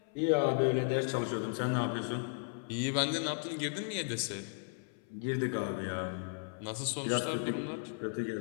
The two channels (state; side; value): silent; right; 54 dB below the other